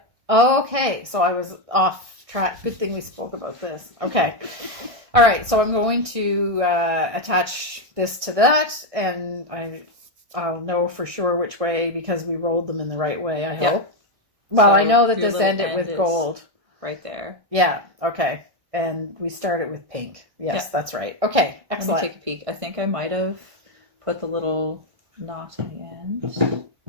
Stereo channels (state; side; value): late; left; 1.6 ms